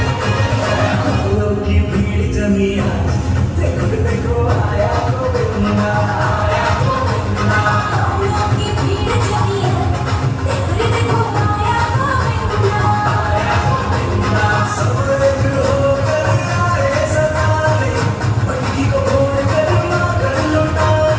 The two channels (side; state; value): both; identical; correlation 1.00